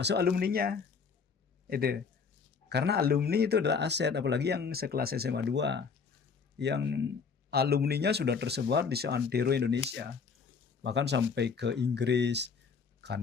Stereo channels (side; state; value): right; quieter; 5.6 dB